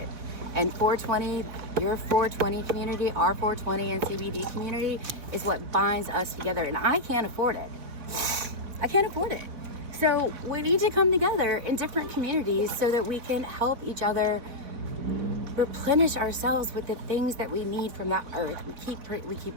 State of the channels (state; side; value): late; left; 4.0 ms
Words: And 420, your 420 community, our 420 and CBD community is what binds us together, and I can't afford it. I can't afford it. So we need to come together in different communities so that we can help each other replenish ourselves with the things that we need from that earth. We keep